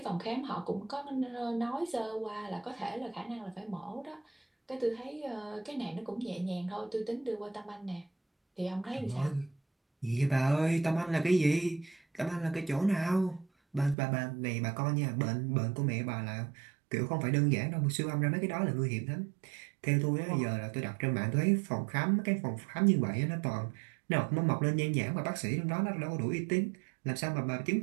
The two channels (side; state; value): left; drops out; at 14.0 s